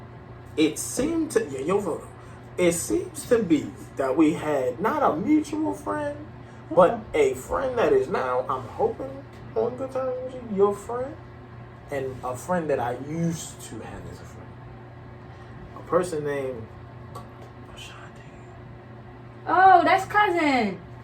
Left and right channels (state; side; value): identical; both; correlation 1.00